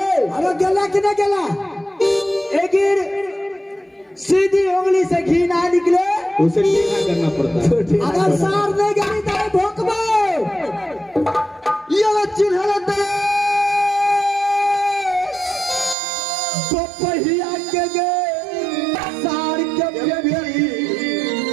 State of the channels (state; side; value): drops out; left; at 16.0 s